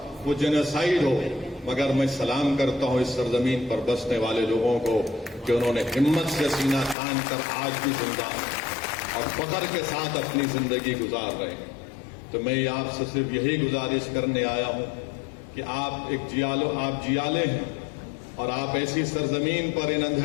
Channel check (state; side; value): drops out; right; at 7.0 s